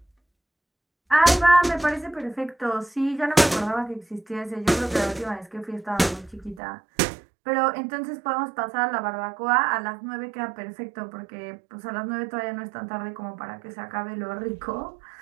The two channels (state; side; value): drops out; left; at 6.6 s